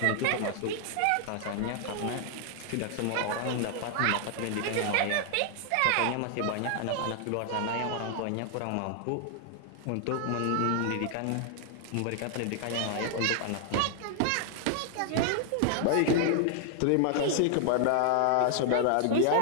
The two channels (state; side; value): different; both; correlation 0.00